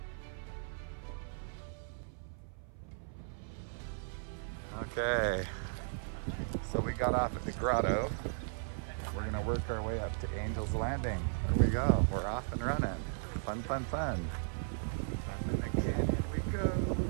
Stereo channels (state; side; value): silent; left; 53 dB below the other